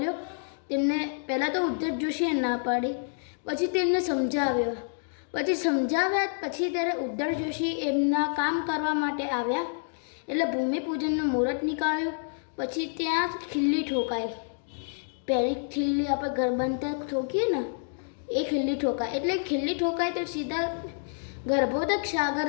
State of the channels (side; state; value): right; silent; digital silence